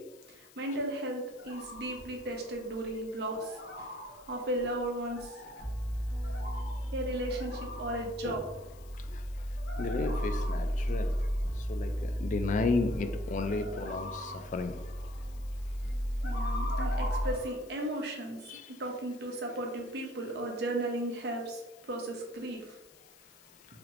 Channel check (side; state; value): left; noise; hiss, 24 dB below the sound